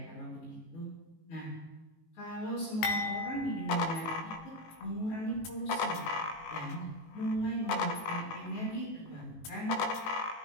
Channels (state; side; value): late; right; 19 ms